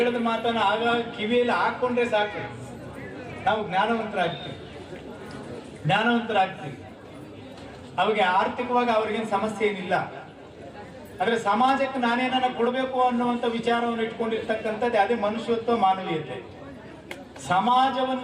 ಮಾತನ್ನ ಆಗಾಗ ಕಿವಿಯಲ್ಲಿ ಹಾಕೊಂಡ್ರೆ ಸಾಕು, ನಾವು ಜ್ಞಾನವಂತರಾಗ್ತೀವಿ. ಅವಿಗೆ ಆರ್ಥಿಕವಾಗಿ ಅವ್ರಿಗೇನು ಸಮಸ್ಯೆ ಏನಿಲ್ಲ. ಆದ್ರೆ ಸಮಾಜಕ್ಕೆ ನಾನೇನ ಕೊಡಬೇಕು ಅನ್ನುವಂಥ ವಿಚಾರವನ್ನು ಇಟ್ಕೊಂಡಿರ್ತಕ್ಕಂಥದ್ದು ಅದೇ ಮನುಷ್ಯತ್ವ, ಮಾನವೀಯತೆ.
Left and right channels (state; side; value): identical; both; correlation 1.00